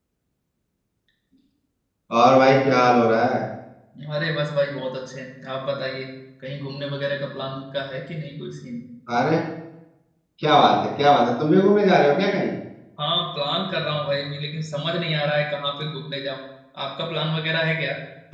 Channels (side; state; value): both; identical; correlation 1.00